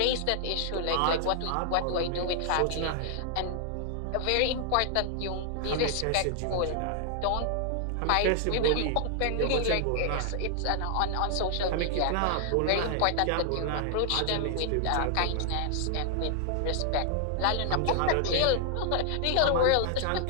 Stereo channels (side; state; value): both; different; correlation -0.01